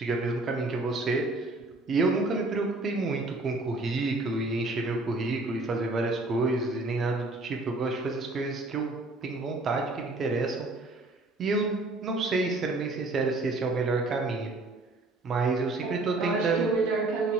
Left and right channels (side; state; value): left; quieter; 3.0 dB